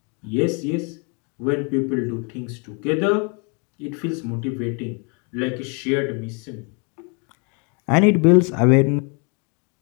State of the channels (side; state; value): right; quieter; 35.3 dB